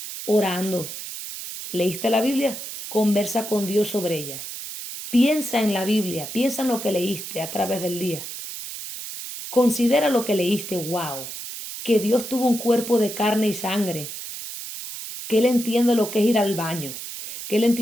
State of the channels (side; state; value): right; noise; hiss, 9 dB below the sound